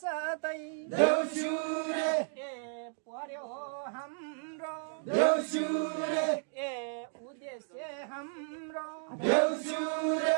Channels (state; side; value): silent; left; digital silence